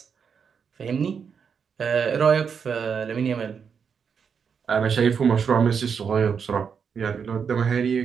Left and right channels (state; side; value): quieter; left; 6.5 dB